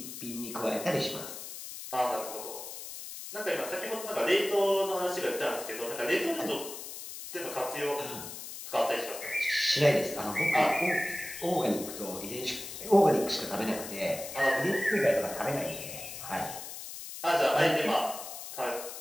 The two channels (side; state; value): left; noise; hiss, 10 dB below the sound